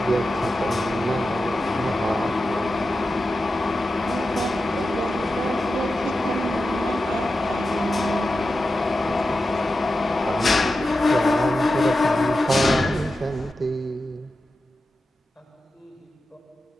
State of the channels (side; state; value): both; normal; correlation 0.91